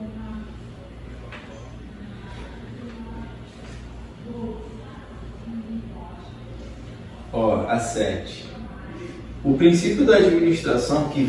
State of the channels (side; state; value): both; identical; correlation 1.00